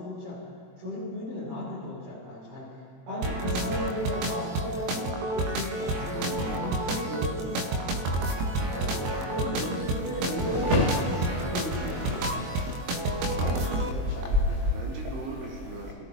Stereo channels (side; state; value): left; late; 23 ms